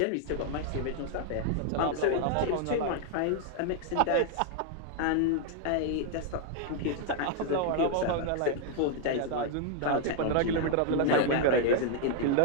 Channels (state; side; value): different; both; correlation 0.00